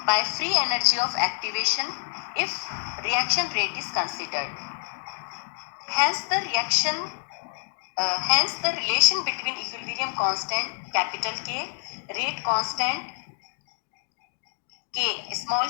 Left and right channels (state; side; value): silent; right; digital silence